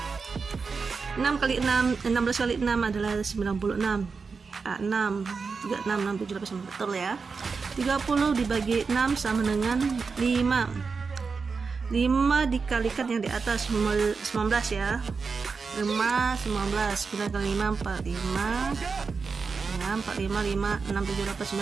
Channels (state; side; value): quieter; left; 4.9 dB